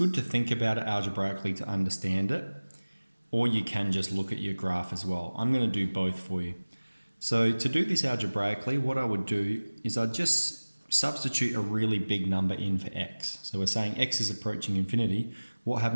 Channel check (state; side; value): inverted; both; correlation -1.00